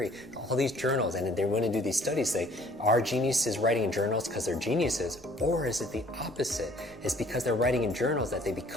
all these journals, and they want to do these studies, say, are geniuses writing in journals because they're geniuses, or is it the opposite? It's because they're writing in journals that they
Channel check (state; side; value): noise; left; rumble, 26 dB below the sound